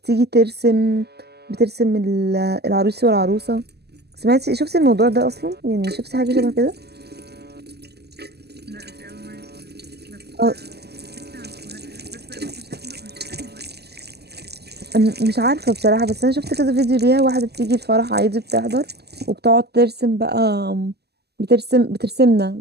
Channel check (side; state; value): left; late; 0.47 ms